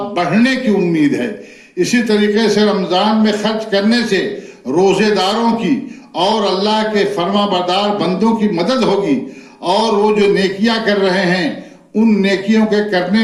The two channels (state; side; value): identical; both; correlation 1.00